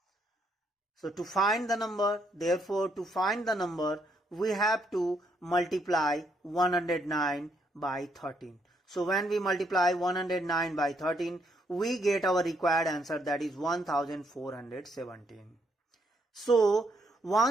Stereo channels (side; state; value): both; normal; correlation 0.73